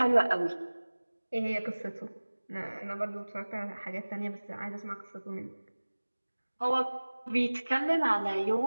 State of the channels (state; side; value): inverted; both; correlation -1.00